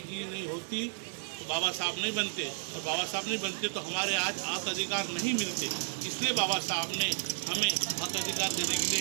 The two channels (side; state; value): left; silent; 56 dB below the other